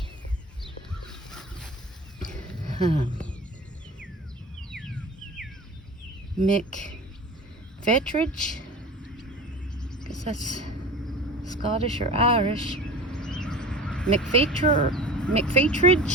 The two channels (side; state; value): both; normal; correlation 0.36